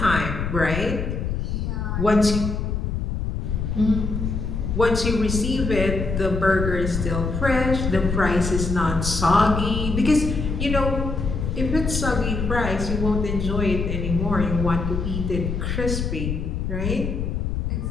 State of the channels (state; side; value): noise; left; rumble, 2 dB below the sound